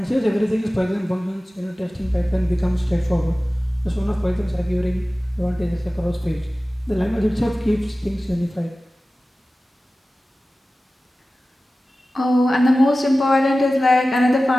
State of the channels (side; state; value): both; normal; correlation 0.96